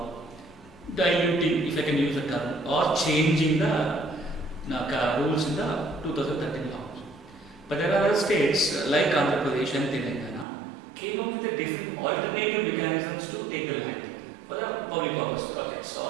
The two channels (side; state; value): left; drops out; at 10.5 s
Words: diluting, if I can use the term, or changing the rules in the 2013 law. But there are other states like Andhra Pradesh and Telangana came up with a different alternative mechanisms to take the land for the public purpose projects